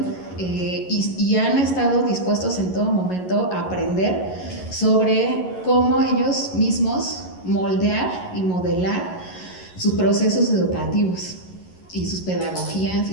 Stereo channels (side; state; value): right; late; 11 ms